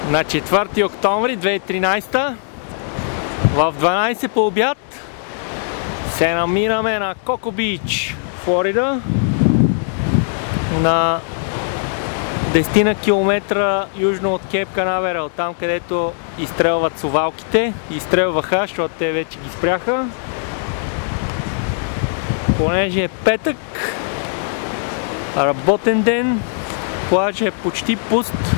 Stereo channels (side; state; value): right; silent; 61 dB below the other